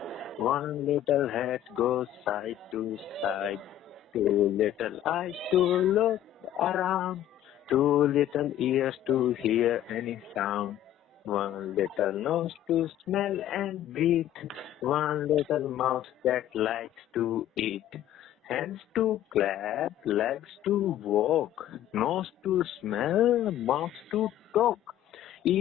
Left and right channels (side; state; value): right; quieter; 12.0 dB